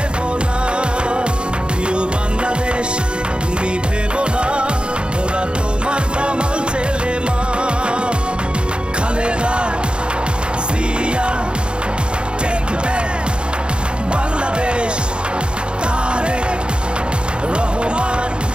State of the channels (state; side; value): late; left; 0.054 ms